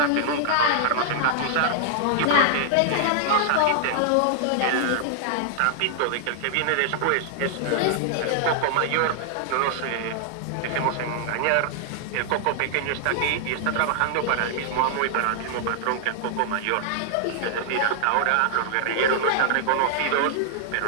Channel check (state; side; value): different; both; correlation -0.01